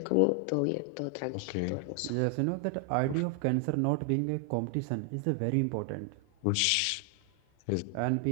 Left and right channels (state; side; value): different; both; correlation 0.00